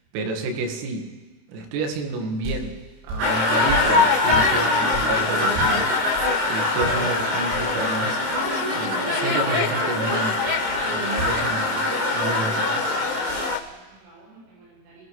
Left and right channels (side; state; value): left; late; 27 ms